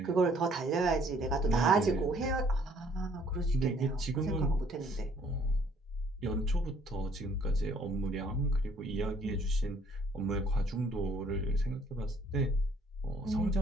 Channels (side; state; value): both; normal; correlation 0.61